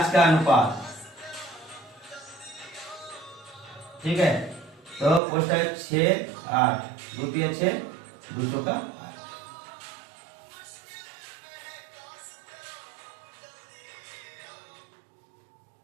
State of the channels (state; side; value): drops out; left; at 5.2 s